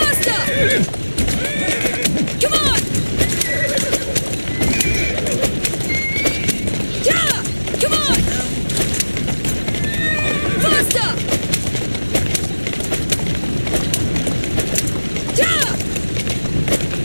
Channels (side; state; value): both; inverted; correlation -1.00